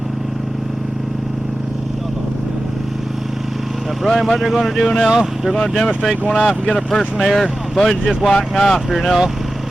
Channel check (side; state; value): both; normal; correlation 0.94